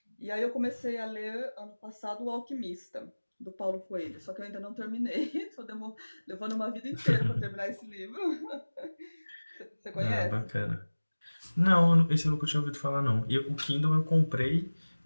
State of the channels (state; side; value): inverted; both; correlation -1.00